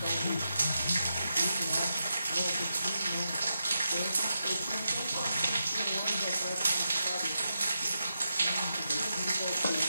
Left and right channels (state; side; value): inverted; both; correlation -0.87